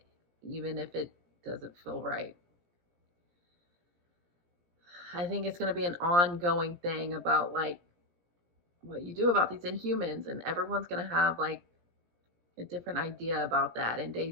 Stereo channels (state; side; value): late; left; 17 ms